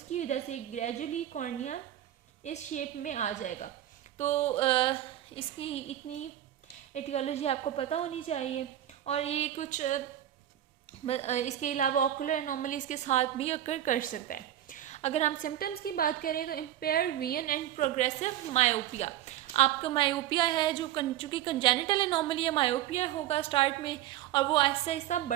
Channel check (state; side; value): quieter; left; 12.4 dB